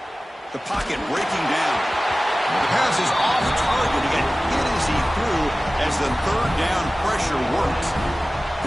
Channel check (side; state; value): both; normal; correlation 0.97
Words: The pocket breaking down. The pass is off target. He got hit as he threw as the 3rd down pressure worked.